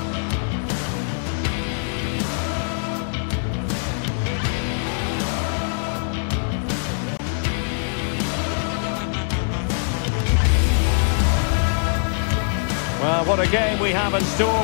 Well, what a game we have in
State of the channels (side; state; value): right; silent; digital silence